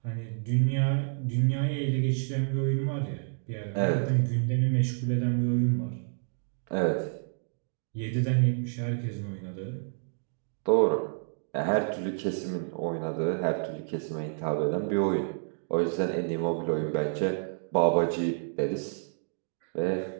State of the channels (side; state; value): left; silent; digital silence